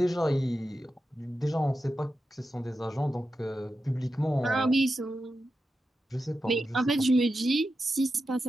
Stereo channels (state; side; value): normal; both; correlation 0.90